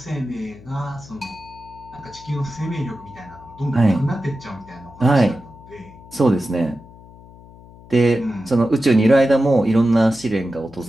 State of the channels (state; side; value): noise; left; hum, 21 dB below the sound